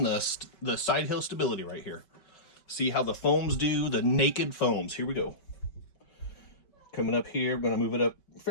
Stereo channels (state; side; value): late; right; 5.2 ms